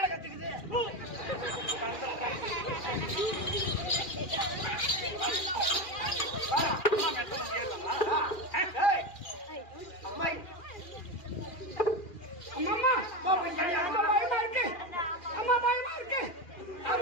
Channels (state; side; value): late; right; 2.4 ms